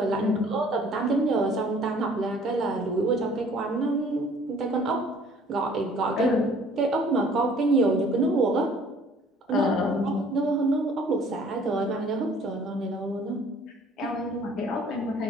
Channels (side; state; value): both; normal; correlation 0.54